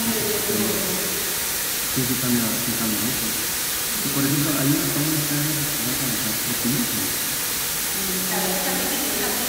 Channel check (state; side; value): identical; both; correlation 1.00